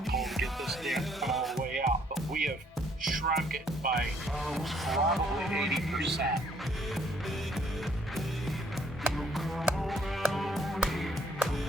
pull to get this dent cut all the way out. But we have shrunk it by probably 80%.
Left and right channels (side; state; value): both; normal; correlation 0.65